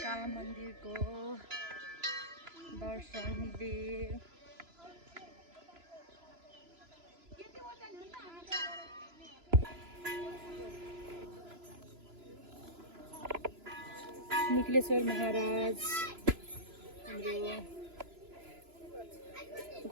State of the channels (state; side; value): late; left; 3.0 ms